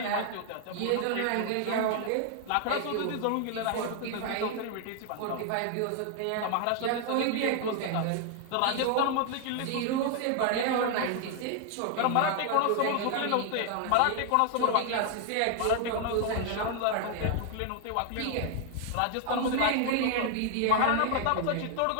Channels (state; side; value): different; both; correlation 0.00